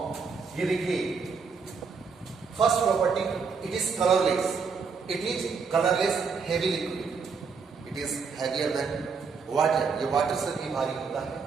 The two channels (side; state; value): left; quieter; 5.4 dB